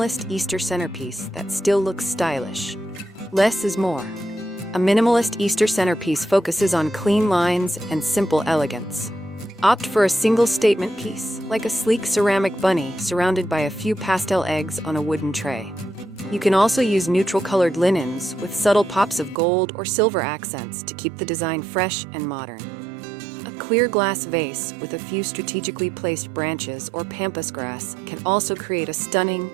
Easter centerpiece that still looks stylish? Less is more. A minimalist Easter centerpiece focuses on clean lines and simple elegance. Opt for a single statement piece, like a sleek ceramic bunny surrounded by a few pastel eggs on a wooden tray. You can also use neutral-colored linens with subtle pops of gold or silver accents to keep the design fresh and modern. A clear glass vase with a few strategically placed branches or pampas grass can also create a stunning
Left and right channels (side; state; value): left; drops out; at 19.4 s